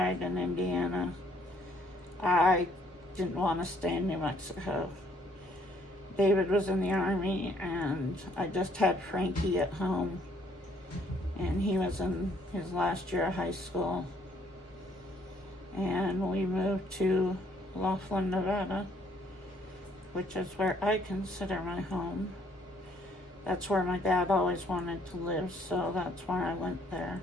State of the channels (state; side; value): normal; both; correlation 0.65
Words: in Indiana, I didn't want to stay in New Mexico. David was in the Army, and I just had Frankie at home, and he was in his last year of high school. And we moved to Laughlin, Nevada, which is where I consider my home. That's where my dad always wanted to live, so that's why I went there.